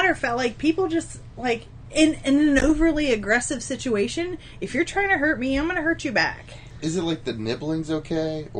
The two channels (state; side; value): identical; both; correlation 1.00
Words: of fact, like, people just, like, in an overly aggressive situation, if you're trying to hurt me, I'm going to hurt you back. Is it like the nibbling's okay?